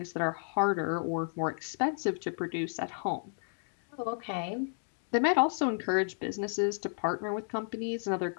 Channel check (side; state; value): right; silent; digital silence